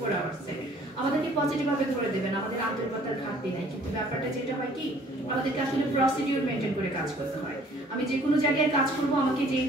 আওয়ার্সে। আমাদেরকে পজিটিভভাবে ধরে দেবেন, আমাদের আন্তরিকতার ঘাটতি নাই, কিন্তু ব্যাপারটা যেটা হয় কি, আমাদেরকে আসলে প্রসিডিউর মেনটেন করে কাজ করতে হয়। আমি যে কোনো জায়গায় কাজ করব, আমাকে যে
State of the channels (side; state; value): both; normal; correlation 0.56